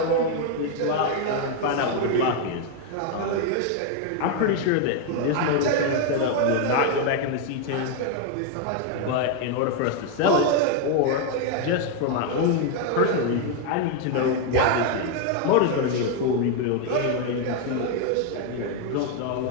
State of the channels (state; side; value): different; both; correlation 0.01